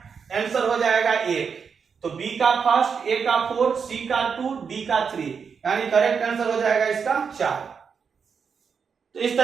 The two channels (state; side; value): quieter; left; 6.2 dB